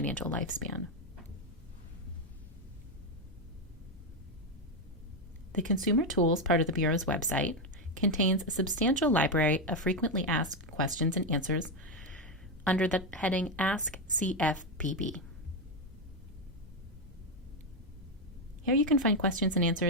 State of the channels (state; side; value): normal; both; correlation 0.07